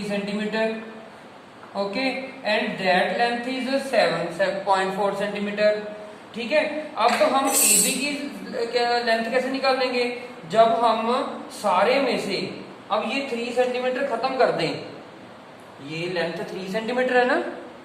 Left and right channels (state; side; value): identical; both; correlation 1.00